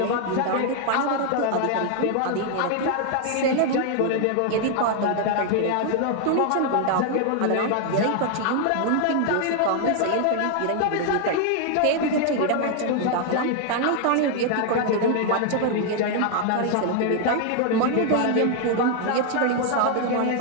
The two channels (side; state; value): both; different; correlation 0.00